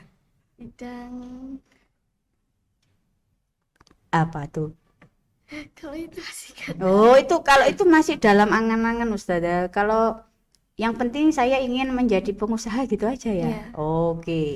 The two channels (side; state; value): both; identical; correlation 1.00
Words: Bidang Apa tuh? kalau itu masih kan. Oh, kalau itu masih dalam angan-angan Ustazah. Kalau yang penting saya ingin menjadi pengusaha gitu aja ya. Iya.